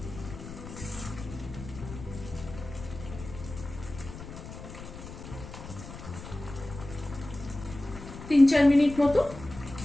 তিন 4 মিনিট মতো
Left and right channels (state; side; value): noise; left; rumble, 12 dB below the sound